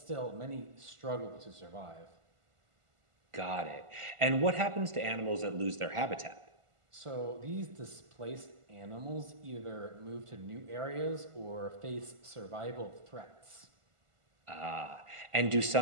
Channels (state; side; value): late; left; 1.5 ms